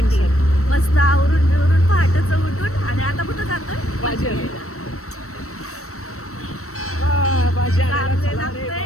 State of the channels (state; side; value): late; right; 0.64 ms